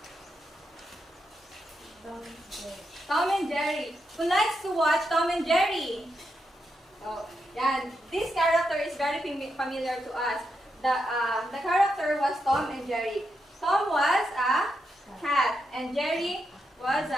Tom and Jerry. Who likes to watch Tom and Jerry? Oh, yeah. This character is very familiar to us. The character was Tom and Jerry. Tom was a cat and Jerry was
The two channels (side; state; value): both; normal; correlation 0.84